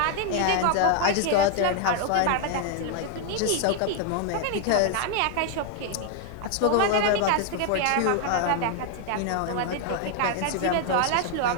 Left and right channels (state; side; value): different; both; correlation 0.00